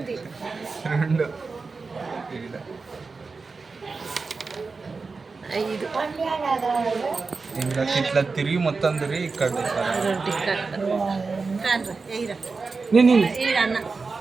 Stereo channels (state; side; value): quieter; left; 4.3 dB